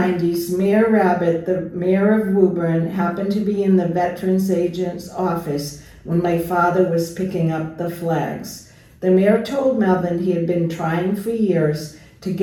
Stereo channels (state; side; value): identical; both; correlation 1.00